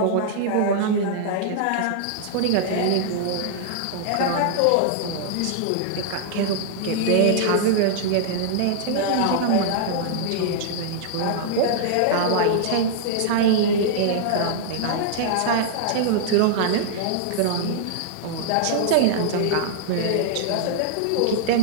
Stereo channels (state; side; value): different; both; correlation -0.01